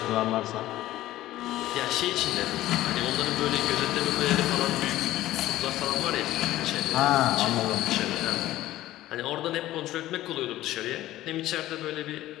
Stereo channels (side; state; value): right; quieter; 15.1 dB